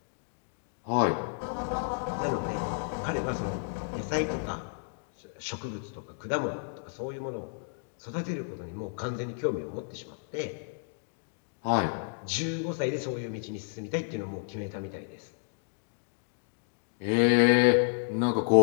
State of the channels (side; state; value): right; silent; digital silence